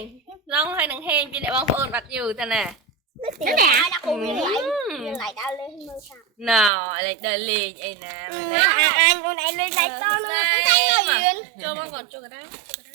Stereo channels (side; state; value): left; drops out; at 6.7 s